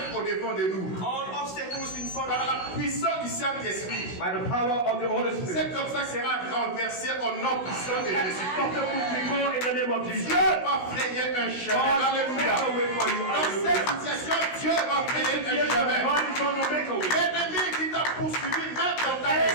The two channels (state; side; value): late; right; 16 ms